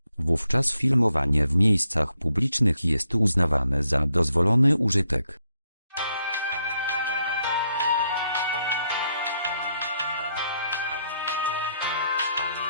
wówczas filmowanie w miejscach publicznych jest uznawane za dozwolony użytek.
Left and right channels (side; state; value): both; inverted; correlation -0.78